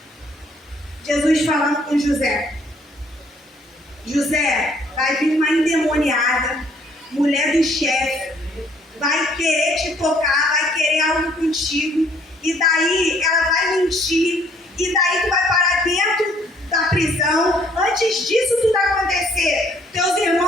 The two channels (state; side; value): normal; both; correlation 0.63